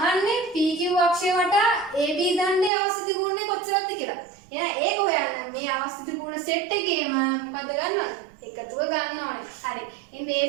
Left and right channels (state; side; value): drops out; left; at 2.7 s